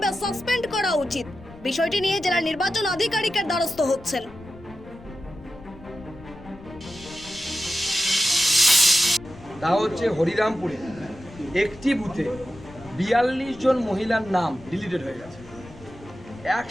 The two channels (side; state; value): left; noise; rumble, 20 dB below the sound